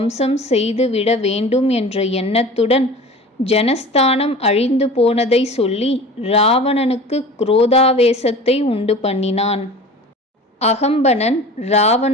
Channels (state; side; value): normal; both; correlation 0.39